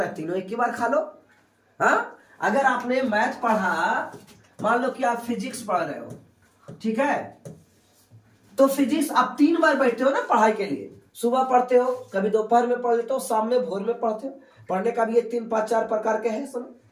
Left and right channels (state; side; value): identical; both; correlation 1.00